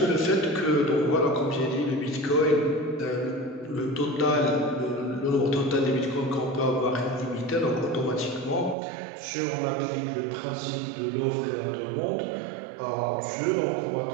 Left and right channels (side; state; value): left; drops out; at 8.8 s